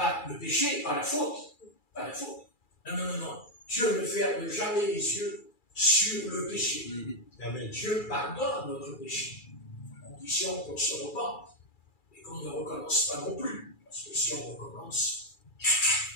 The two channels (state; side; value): late; right; 2.3 ms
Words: le péché, pas la faute. Pas la faute. Non. Dieu ne ferme jamais les yeux sur le péché. Amen. Dieu pardonne notre péché, à condition qu'on se repente et qu'on ne recommence pas non plus. Parce que si on recommence,